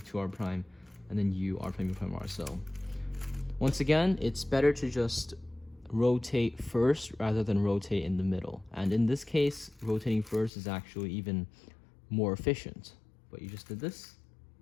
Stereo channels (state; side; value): drops out; right; at 10.5 s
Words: r prime and then u r prime u prime r. So once again, it's better to just rotate first rather than rotate in the middle, and in this case rotating first is actually even more efficient. But you just did this,